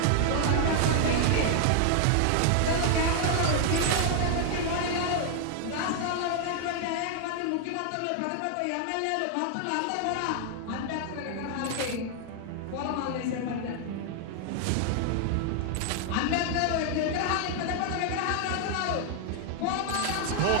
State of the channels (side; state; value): both; different; correlation 0.00